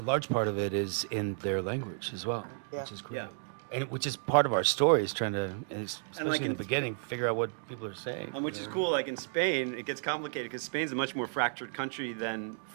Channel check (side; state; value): left; silent; digital silence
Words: part of it is in their language as well, which is great. Yeah. And which is part of our story, is trying to, especially like in the beginning, figure out what people are saying. And which is cool, like in Spain, it gets complicated because Spain's a much more fractured country than